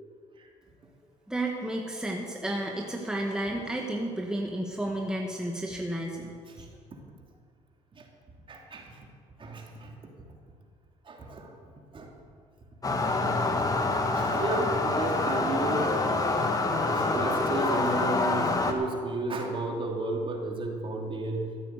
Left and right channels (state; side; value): normal; both; correlation 0.53